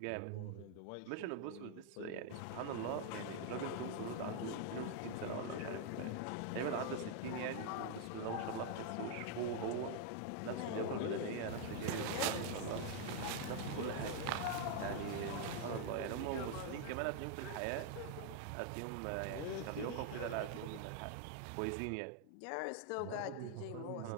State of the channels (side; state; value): both; different; correlation 0.00